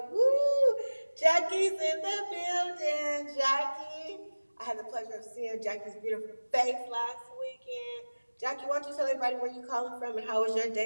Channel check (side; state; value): both; inverted; correlation -1.00